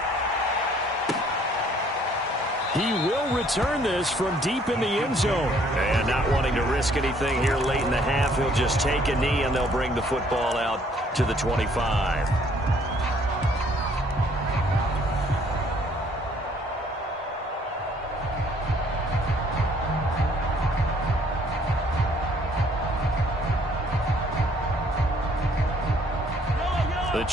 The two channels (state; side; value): normal; both; correlation 0.62